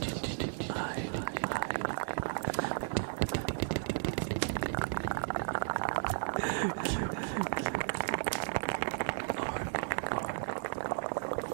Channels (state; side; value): silent; left; digital silence